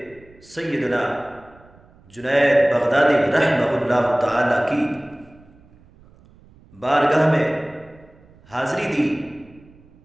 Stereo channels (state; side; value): noise; right; rumble, 27 dB below the sound